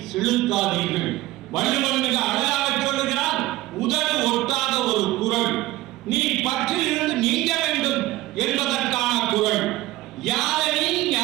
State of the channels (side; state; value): left; quieter; 17.4 dB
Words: செலுத்தாதீர்கள். வள்ளுவன் மிக அழகாக சொல்லுகிறான், உதடு ஒட்டாத ஒரு குறள், நீ பற்றிலிருந்து நீங்க வேண்டும் என்பதற்கான குறள். யாதனின்